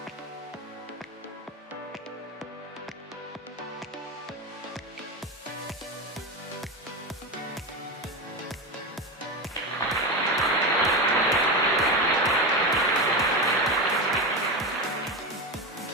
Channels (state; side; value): normal; both; correlation 0.17